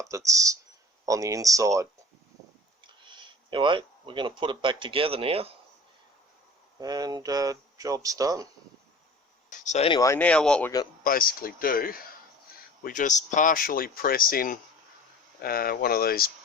that's on the inside. Anyway, we're going to put it back together now, and job's done. So anyway, now what we're going to basically do, we just partially press in one of these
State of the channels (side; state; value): both; normal; correlation 0.41